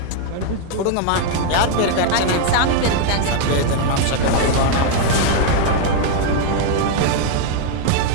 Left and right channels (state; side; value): different; both; correlation 0.00